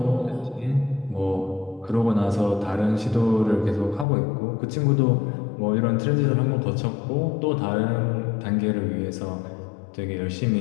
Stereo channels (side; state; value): right; drops out; at 4.0 s